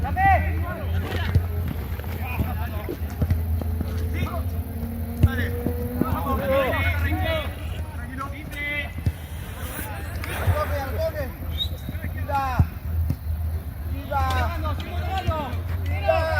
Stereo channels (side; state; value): both; identical; correlation 1.00